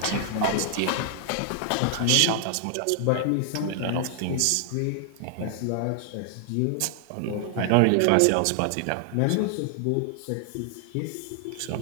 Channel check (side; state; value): both; different; correlation 0.00